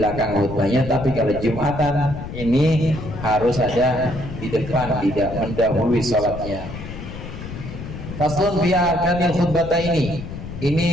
khutbahnya, tapi kalau Jumatan ini harus ada di depan, tidak mendahului sholatnya. Faslun fi arkanil khutbata ini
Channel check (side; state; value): left; noise; rumble, 10 dB below the sound